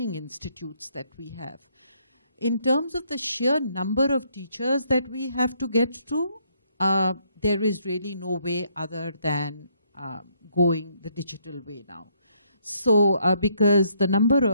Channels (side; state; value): both; inverted; correlation -0.71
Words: institutes that we have. In terms of the sheer number of teachers that we have to get to, there is really no way other than going the digital way now. So because the number